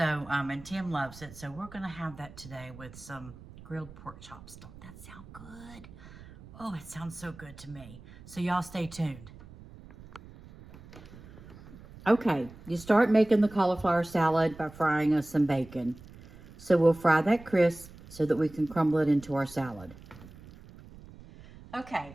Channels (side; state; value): right; noise; rumble, 19 dB below the sound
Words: and Tim loves it. So we're going to have that today with some grilled pork chops. Don't that sound good? Oh, it sounds so good to me. So y'all stay tuned. Okay, you start making the cauliflower salad by frying us some bacon. So we'll fry that crisp so that we can crumble it into our salad.